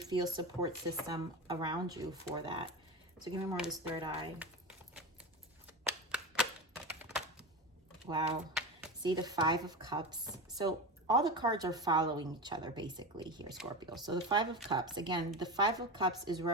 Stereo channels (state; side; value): normal; both; correlation 0.23